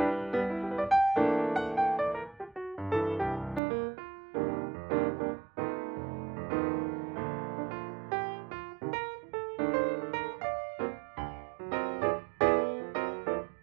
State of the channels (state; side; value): drops out; left; at 3.6 s